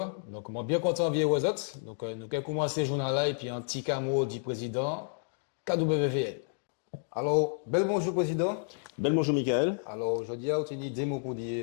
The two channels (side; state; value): right; silent; digital silence